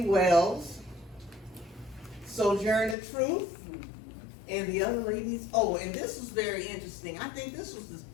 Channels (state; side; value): drops out; right; at 3.0 s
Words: Sojourner Truth, and the other ladies. Oh, and this was very interesting. I think this was the